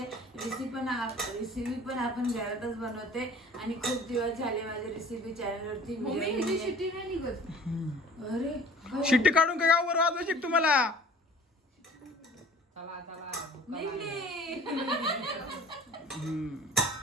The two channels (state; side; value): normal; both; correlation 0.47